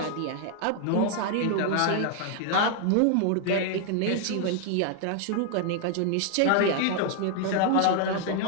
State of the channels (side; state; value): both; different; correlation 0.00